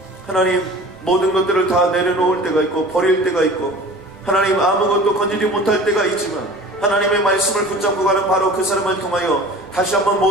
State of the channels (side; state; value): both; normal; correlation 0.42